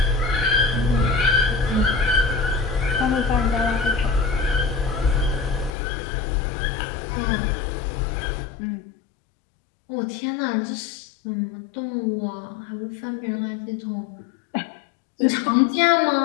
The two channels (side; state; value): right; drops out; at 5.7 s